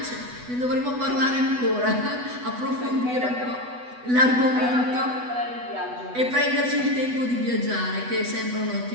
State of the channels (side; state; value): left; late; 8.1 ms